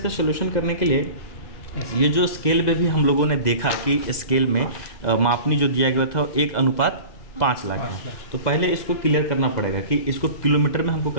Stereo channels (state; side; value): late; right; 2.0 ms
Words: सोल्यूशन करने के लिए ये जो स्केल पे भी हम लोगों ने देखा कि स्केल में मापनी जो दिया गया था 1:5 लाख है। तो पहले इसको क्लियर करना पड़ेगा कि इसको किलोमीटर में हमको